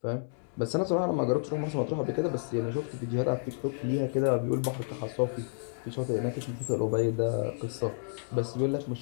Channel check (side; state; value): right; silent; digital silence